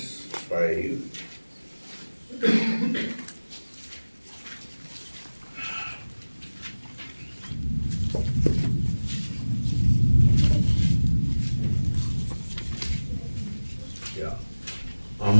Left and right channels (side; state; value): both; inverted; correlation -1.00